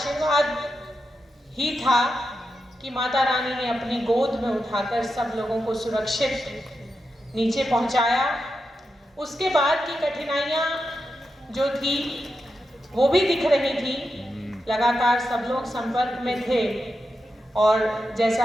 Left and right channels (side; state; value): both; normal; correlation 0.88